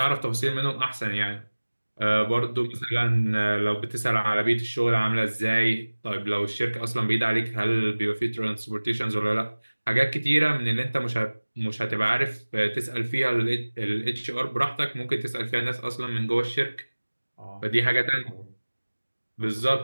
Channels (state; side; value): inverted; both; correlation -1.00